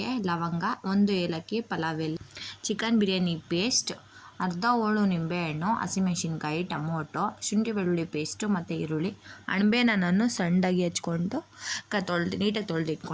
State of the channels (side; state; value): both; identical; correlation 1.00